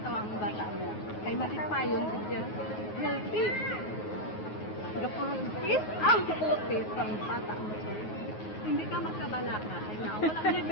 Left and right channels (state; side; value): late; right; 9.4 ms